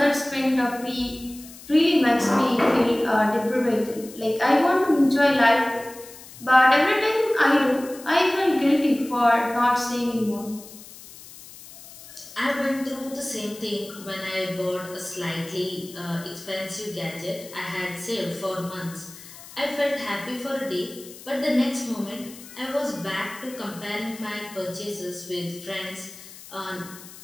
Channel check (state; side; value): noise; left; hiss, 18 dB below the sound